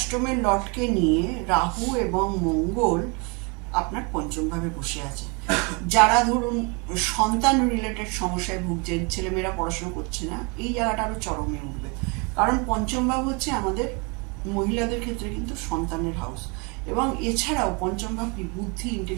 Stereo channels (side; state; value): left; quieter; 31.6 dB